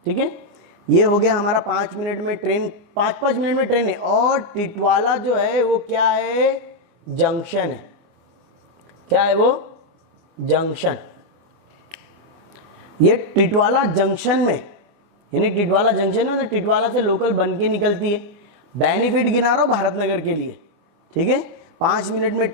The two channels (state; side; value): late; left; 24 ms